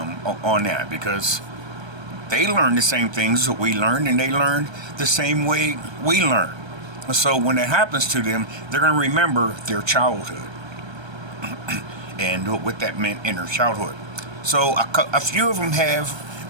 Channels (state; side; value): late; left; 1.3 ms